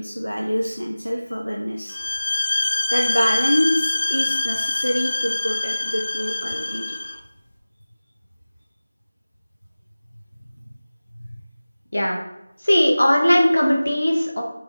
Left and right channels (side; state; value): both; inverted; correlation -0.98